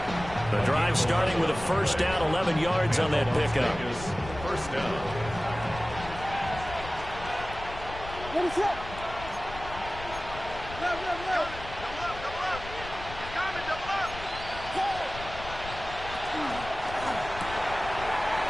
The drive starting with a first down, 11 yards on that pickup. First down. What is that?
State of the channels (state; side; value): noise; left; rumble, 12 dB below the sound